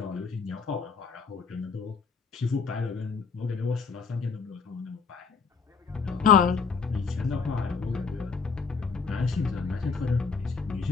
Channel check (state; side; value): quieter; right; 5.3 dB